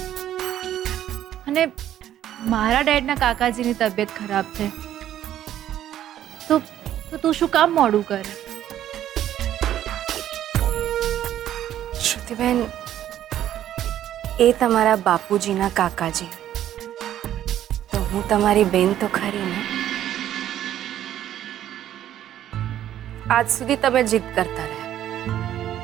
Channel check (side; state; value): left; quieter; 11.7 dB